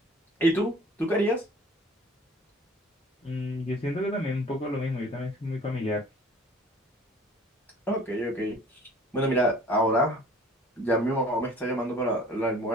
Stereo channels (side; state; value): both; normal; correlation 0.49